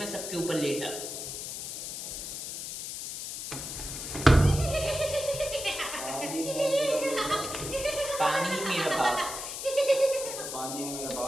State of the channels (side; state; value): left; noise; hiss, 6 dB below the sound